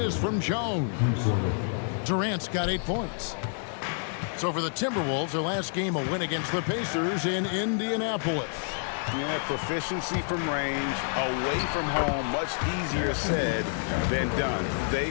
from Jones. Durant's got 8 points. So for the Timberwolves, their last game, a win against the Pacers in Indianapolis. Yeah, proficiency from range, away from home, much easier said than done. They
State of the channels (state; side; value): silent; right; 59 dB below the other